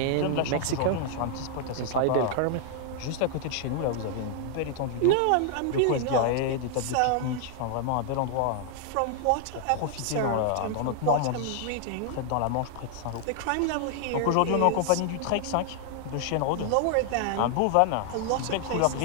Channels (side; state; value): both; different; correlation 0.00